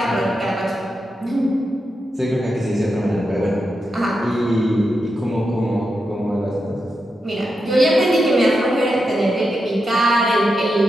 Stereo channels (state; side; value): normal; both; correlation 0.87